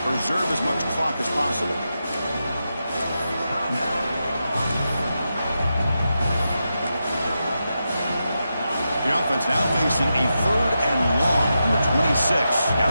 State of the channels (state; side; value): inverted; both; correlation -0.88